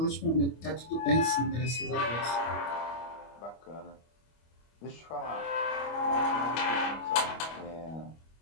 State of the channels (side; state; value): right; late; 25 ms